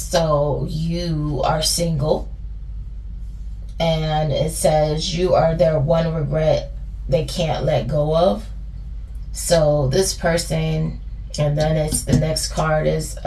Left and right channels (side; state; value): both; identical; correlation 1.00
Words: you are single, and it says you are their one regret they can't let go of. So this person, and then it's the next card is